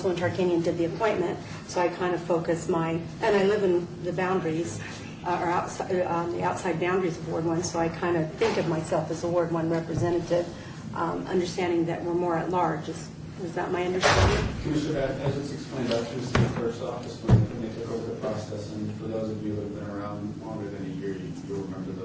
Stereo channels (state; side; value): identical; both; correlation 1.00